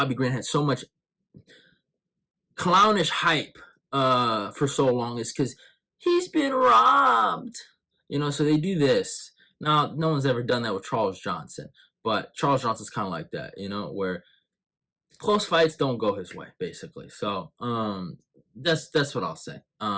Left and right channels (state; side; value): identical; both; correlation 1.00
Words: Green had so much clownish hype for so long, is because he's been robbed, so they do this. Now, no one's ever done that with Charles Johnson, but Charles Johnson's kind of like that, where close fights don't go his way, basically. So that's what I'll say